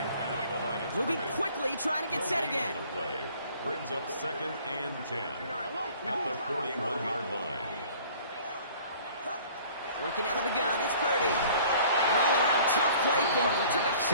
Moving quickly, trying to get set again. Brings up 2nd and 10 at the 41-yard line. Working out of the gun, it's Purdy. An all-around tough play for him. He took a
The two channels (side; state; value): both; inverted; correlation -0.51